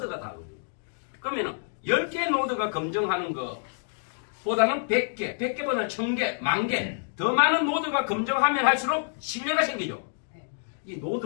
다르거든요. 그러면 10개 노드가 검증하는 것보다는 100개, 100개보다는 1000개, 10,000개 더 많은 노드가 검증하면 할수록 신뢰가 생기죠. 이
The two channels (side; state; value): right; silent; digital silence